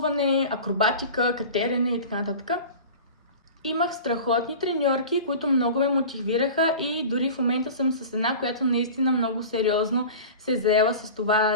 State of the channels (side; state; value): both; inverted; correlation -0.36